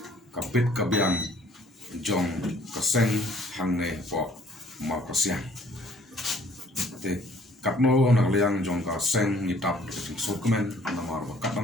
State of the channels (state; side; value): normal; both; correlation 0.58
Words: kapit kabyang jong kaseng hangne po ma kasyang te kapno na liang jong kaseng ni tap ki sokmen na mar ba